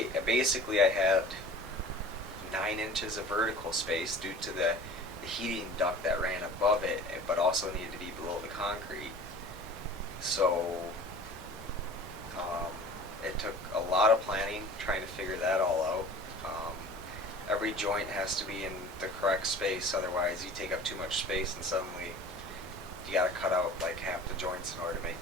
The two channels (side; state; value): both; normal; correlation 0.41